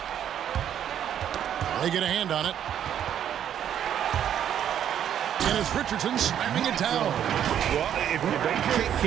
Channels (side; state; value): left; quieter; 9.8 dB